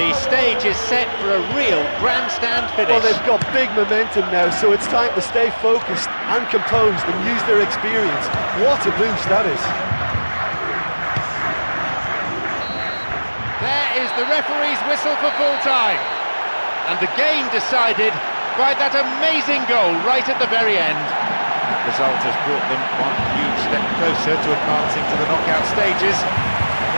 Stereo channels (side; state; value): both; inverted; correlation -1.00